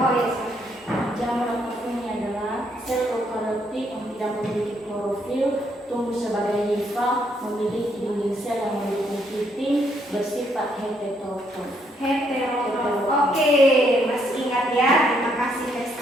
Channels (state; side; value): normal; both; correlation 0.72